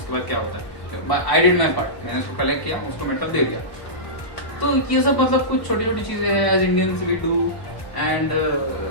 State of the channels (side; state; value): right; late; 1.1 ms